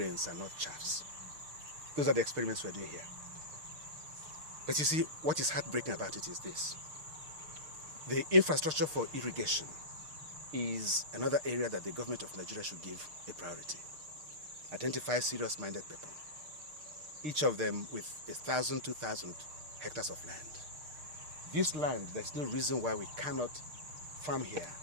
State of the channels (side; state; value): left; late; 6.6 ms